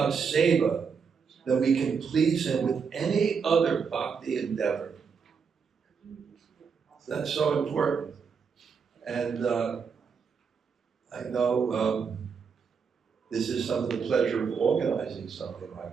Seva than we can please Him with any other bhakti endeavor. That's so important. And I know this is some of the pleasure of organizing something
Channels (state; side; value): quieter; left; 6.0 dB